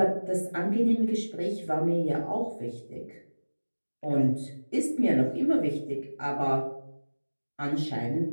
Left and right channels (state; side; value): inverted; both; correlation -1.00